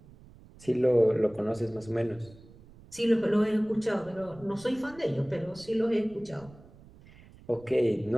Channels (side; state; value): right; noise; rumble, 23 dB below the sound